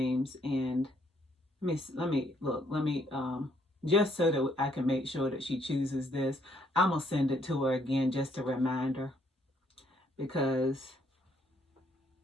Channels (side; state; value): both; normal; correlation 0.69